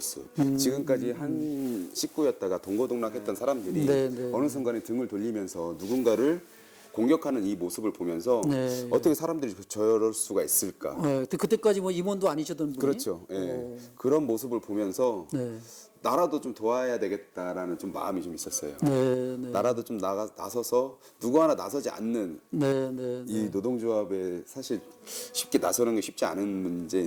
지금까지 한 식구였다가 동고동락했던 사람들이 어느 순간에 등을 돌리면서 누군가를 공격하는 이 모습을 보면서 어떻게 사람들이 저럴 수가 있을까. 그때까지 뭐 임원도 아니셨던 분이. 그렇죠. 그런 모습을 보면서 나라도 좀 도와야 되겠다라는 좀 마음이 좀 있었어요. 나라도 좀 나서서 누구 하나 나서지 않는 이 노동조합에 사실 쉽게 나서는 게 쉽지 않은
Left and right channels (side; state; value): both; identical; correlation 1.00